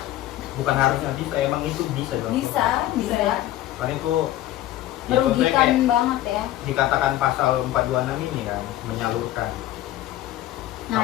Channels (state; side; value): quieter; right; 14.3 dB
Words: Bukan harusnya bisa, emang itu bisa dong. Bisa ya. Karena itu ya, contohnya Merugikan kayak banget ya. dikatakan pasal 426 ini kan, menyalurkan. Nah